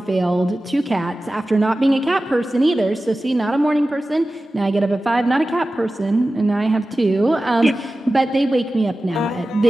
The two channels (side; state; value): both; normal; correlation 0.95